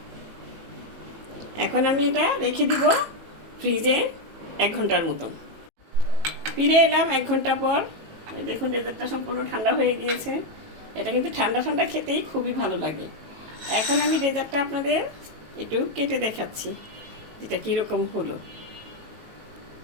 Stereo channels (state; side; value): late; left; 18 ms